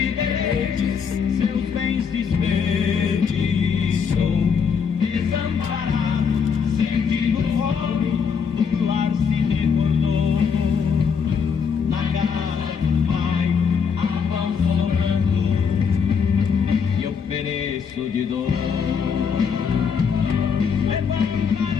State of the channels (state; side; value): quieter; right; 6.3 dB